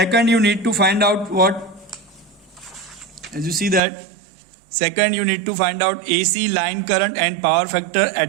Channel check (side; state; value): left; drops out; at 3.8 s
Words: you need to find out what? As you see that, second you need to find out AC line current and power factor